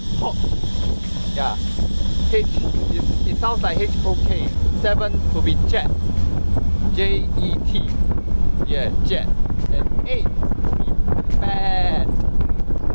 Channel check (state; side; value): inverted; both; correlation -1.00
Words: Hok. Yeah. H, it sounds like H-O-K. 7 will be Jet. J-E-T. Yeah, Jet. And 8 will be Bad.